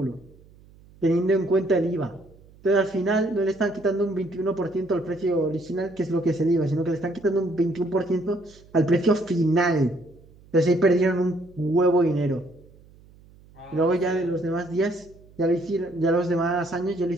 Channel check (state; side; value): noise; right; hum, 26 dB below the sound